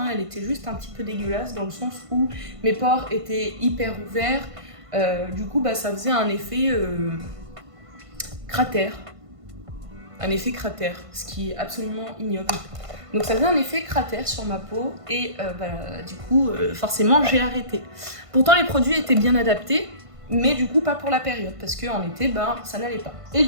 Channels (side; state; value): left; late; 1.5 ms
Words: elle était juste un petit peu dégueulasse dans le sens où mes pores étaient hyper ouverts, du coup ça faisait un effet cratère, ce qui est absolument ignoble. Donc ça faisait un effet cratère sur ma peau et du coup forcément j'ai arrêté. Pourtant les produits étaient bien adaptés, mais du coup pas pour la période, parce qu'en été ça n'allait pas. Et